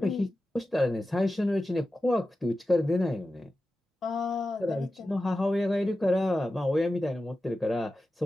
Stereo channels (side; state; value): both; normal; correlation 0.93